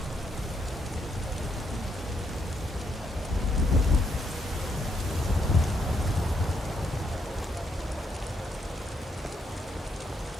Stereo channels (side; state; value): both; normal; correlation 0.77